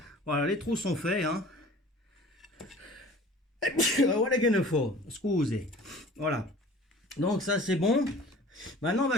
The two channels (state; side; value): normal; both; correlation 0.45